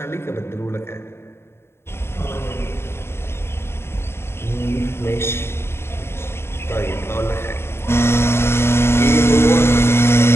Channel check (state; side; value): late; right; 0.12 ms